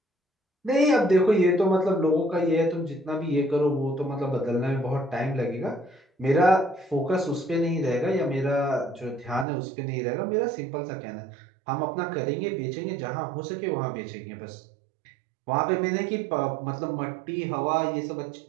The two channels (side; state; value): left; drops out; at 9.5 s